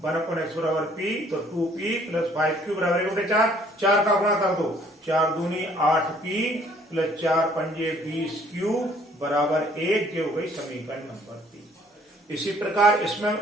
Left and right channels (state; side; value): normal; both; correlation 0.59